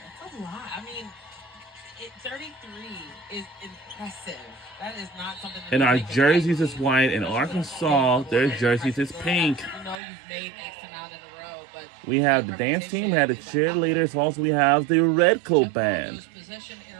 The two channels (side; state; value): left; drops out; at 10.0 s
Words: That's a lot. I mean, 33 is impressive. That is not something. And our jerseys is white. In Arkansas, their jerseys is pink. You know you've made X amount in a row, but we have the dance team, we have the cheerleaders, also we have the Red Coat Band. Possession